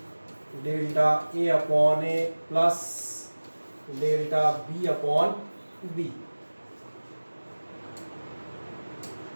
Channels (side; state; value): both; inverted; correlation -1.00